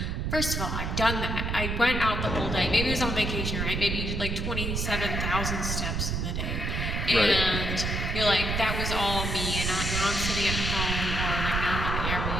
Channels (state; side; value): noise; right; rumble, 1 dB below the sound